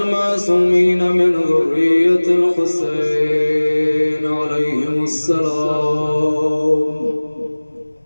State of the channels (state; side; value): inverted; both; correlation -1.00